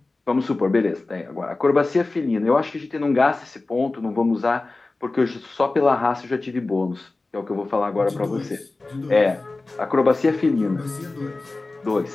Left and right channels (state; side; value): quieter; right; 3.3 dB